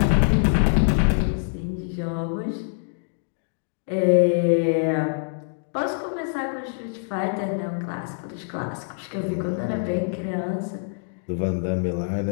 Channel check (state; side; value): silent; right; digital silence